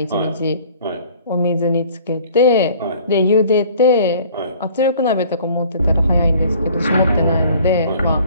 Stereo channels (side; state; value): both; inverted; correlation -0.52